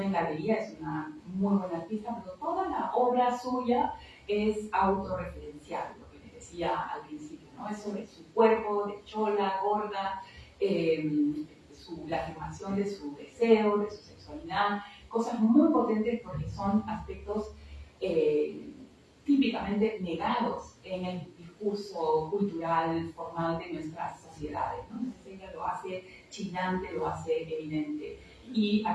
en galería, es una muy buena artista, pero toda la obra suya es autorreferencial, lo que les decía al principio, ¿no? Es sobre su cuerpo de chola, gorda, la afirmación de su deseo, de su sexualidad, cosas muy potentes porque son aspectos típicamente negados en el discurso cultural formal de nuestras sociedades, ¿no? Entonces ella lo hace chillante, lo hace evidente. Y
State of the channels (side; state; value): both; identical; correlation 1.00